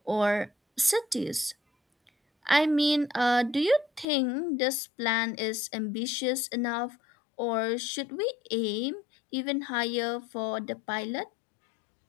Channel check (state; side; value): drops out; right; at 4.0 s